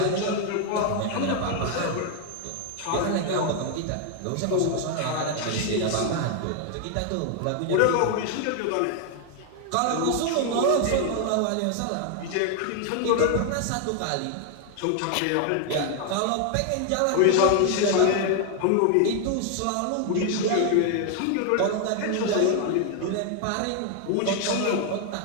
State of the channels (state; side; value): different; both; correlation 0.00